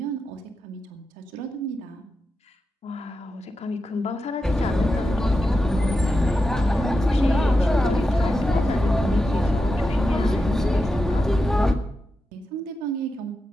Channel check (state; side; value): normal; both; correlation 0.89